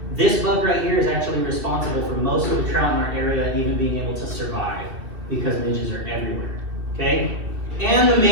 This bug right here is actually responsible for most of the trout in our area even being able to survive, because midges are everywhere, okay? And the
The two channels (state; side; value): late; left; 2.7 ms